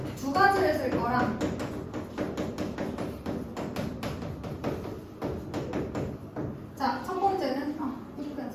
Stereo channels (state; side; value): identical; both; correlation 1.00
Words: 두 가지를 쓸 거라 자,